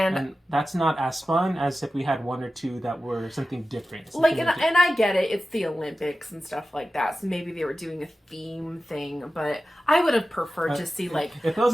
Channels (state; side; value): normal; both; correlation 0.94